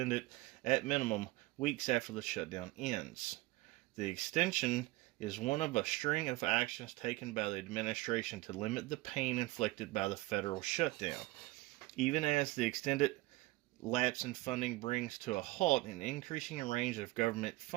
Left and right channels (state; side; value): quieter; left; 20.3 dB